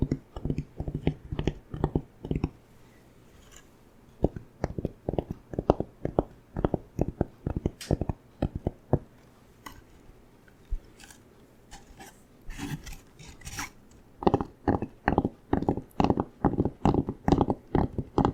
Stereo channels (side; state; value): both; identical; correlation 1.00